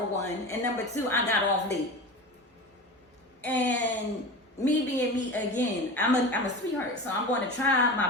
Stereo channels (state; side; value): normal; both; correlation 0.30